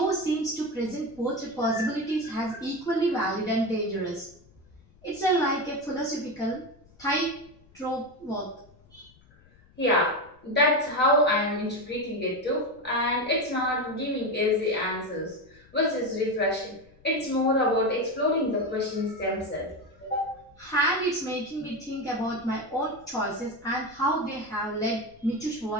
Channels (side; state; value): left; noise; rumble, 28 dB below the sound